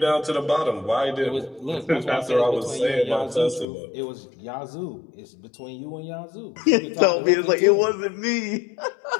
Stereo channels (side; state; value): right; drops out; at 3.7 s